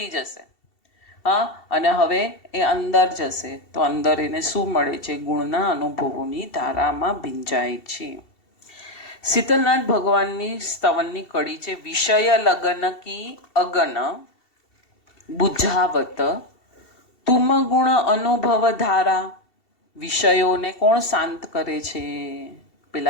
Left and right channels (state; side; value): late; right; 2.7 ms